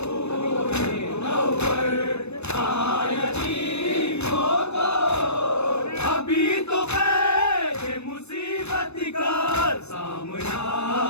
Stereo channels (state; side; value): late; right; 0.81 ms